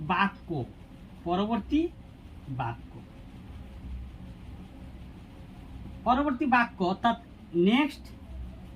বাক্য, পরবর্তী বাক্য অর্থাৎ নেক্সট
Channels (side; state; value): both; identical; correlation 1.00